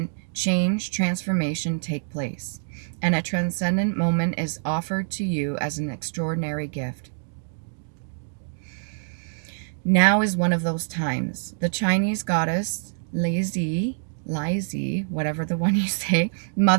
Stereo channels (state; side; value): silent; left; digital silence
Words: change, transformation take place, and a transcendent moment is offered to you as an extraordinary gift. Now is one of those times. The Chinese goddess Leizi, whatever the one you say,